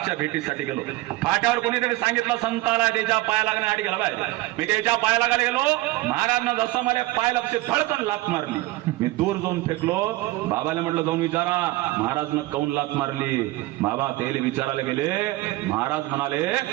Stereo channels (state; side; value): quieter; left; 18.8 dB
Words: भेटीसाठी गेलो. फाट्यावर कोणीतरी सांगितलं संताला त्याच्या पाया लागण्यासाठी गेला पाहिजे. मी त्याच्या पाया लागायला गेलो. महाराजनं जसं मला पाय लक्ष धडकन लात मारली. मी दूर जाऊन फेकलो. बाबाला म्हटलं जाऊन विचारा महाराजनं काऊन लात मारली. बाबा तेले विचारायला गेले. महाराज म्हणाले